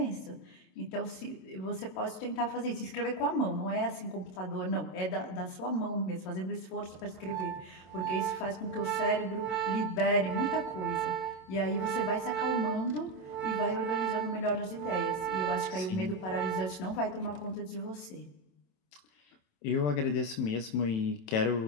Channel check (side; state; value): right; late; 27 ms